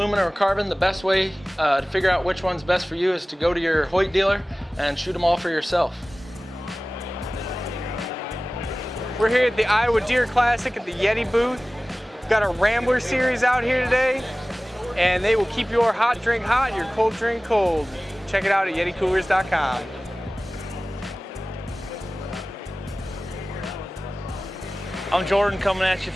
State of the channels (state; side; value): normal; both; correlation 0.98